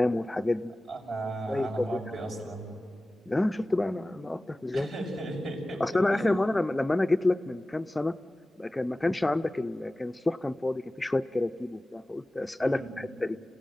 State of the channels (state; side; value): normal; both; correlation 0.96